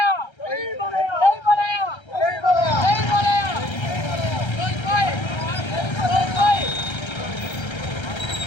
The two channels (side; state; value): right; late; 1.3 ms